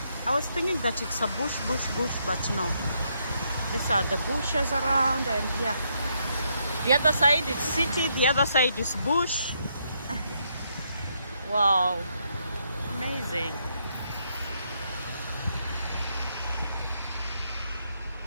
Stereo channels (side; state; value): both; inverted; correlation -0.76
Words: was thinking that it's a bush, but no. These are the bushes around, and yeah. The other side is city, the other side is bush. Wow. Amazing.